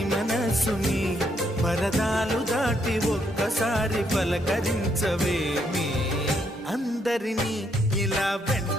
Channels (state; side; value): normal; both; correlation 0.74